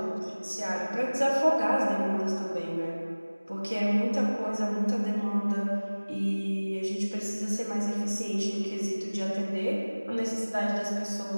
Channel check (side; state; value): both; inverted; correlation -1.00